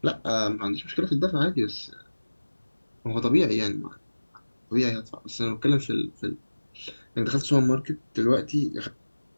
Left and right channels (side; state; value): both; inverted; correlation -1.00